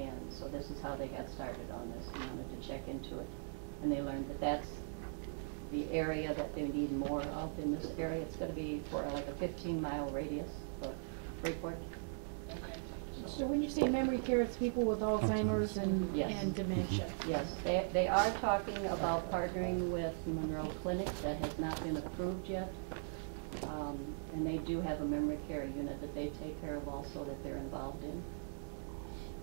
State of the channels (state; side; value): silent; left; 51 dB below the other